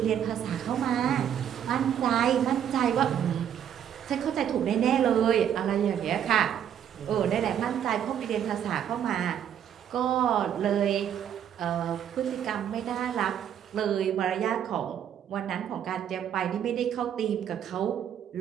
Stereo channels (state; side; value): quieter; left; 9.4 dB